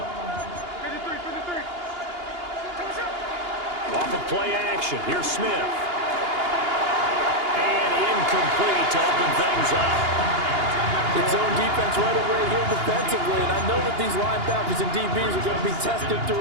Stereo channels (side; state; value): left; late; 2.8 ms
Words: Off of play action. Here's Smith. And incomplete to open things up. It's zone defense right away here defensively, and I know that these linebackers and DBs are going to be tested